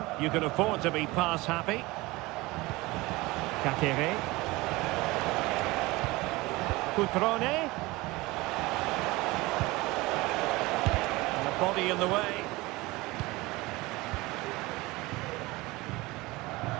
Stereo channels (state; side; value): quieter; left; 21.5 dB